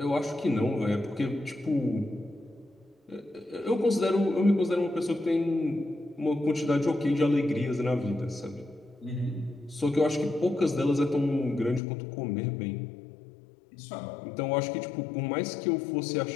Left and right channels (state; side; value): drops out; right; at 11.8 s